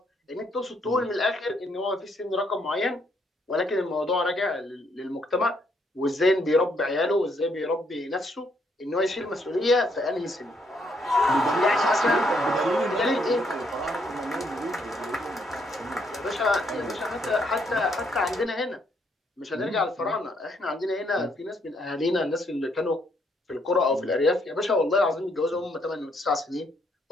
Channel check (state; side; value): normal; both; correlation 0.72